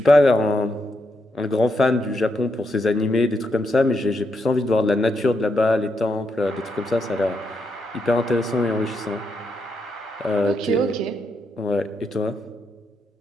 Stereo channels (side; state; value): both; normal; correlation 0.81